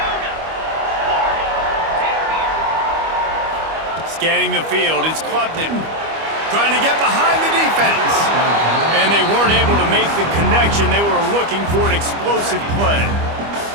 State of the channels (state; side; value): late; left; 25 ms